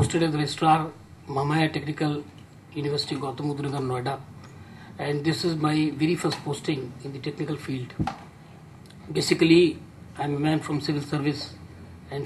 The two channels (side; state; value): both; identical; correlation 1.00